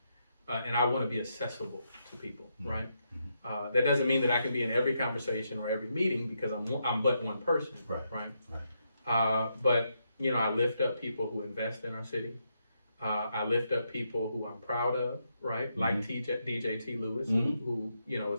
And I want to be accessible to people, right? That doesn't mean that I can be in every conversation or every meeting because I'm but one person, right? But, I lift up people who invest in our city. I lift up people who I'm proud of, right? Like DJ T. Lewis, who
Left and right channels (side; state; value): both; inverted; correlation -0.81